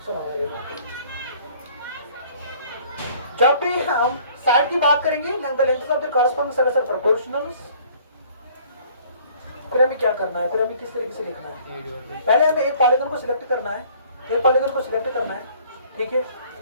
सुनो जब भी हम साइड की बात करेंगे, length of the corresponding sides are proportional, फिर हमें क्या करना है, फिर हमें किस तरीके से लिखना है, पहले हमें एक पॉलीगन को सिलेक्ट करना है, एक पॉलीगन को सिलेक्ट करना है, ठीक है,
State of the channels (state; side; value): inverted; both; correlation -0.55